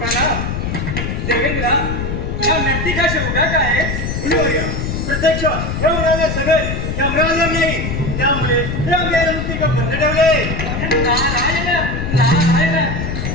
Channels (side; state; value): left; noise; rumble, 3 dB below the sound